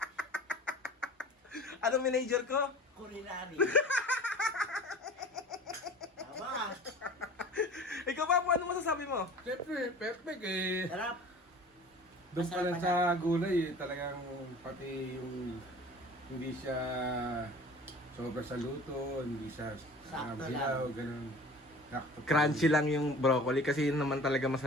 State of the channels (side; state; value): both; normal; correlation 0.41